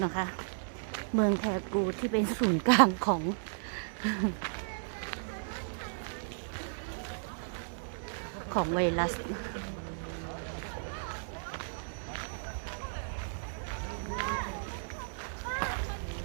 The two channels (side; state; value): left; silent; digital silence